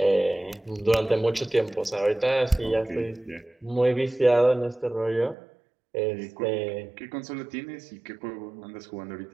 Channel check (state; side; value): drops out; left; at 5.4 s